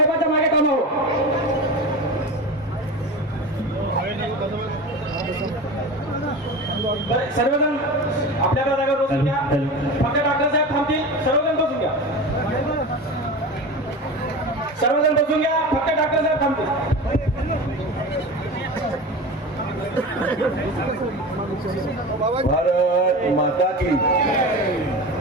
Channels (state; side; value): normal; both; correlation 0.29